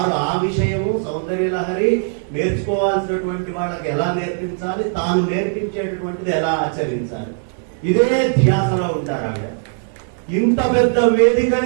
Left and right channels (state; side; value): silent; left; digital silence